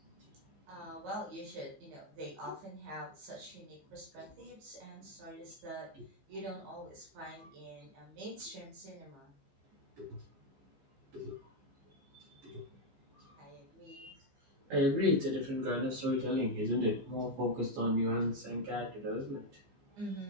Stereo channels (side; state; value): left; late; 14 ms